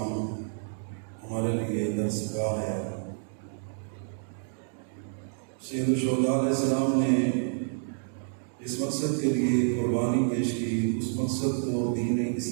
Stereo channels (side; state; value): left; silent; digital silence